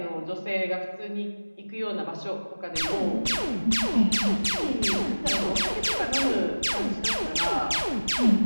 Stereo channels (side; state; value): both; inverted; correlation -1.00